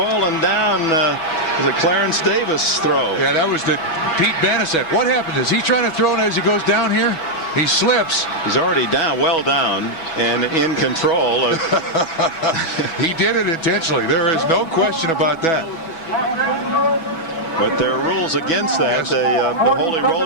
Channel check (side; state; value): right; late; 6.1 ms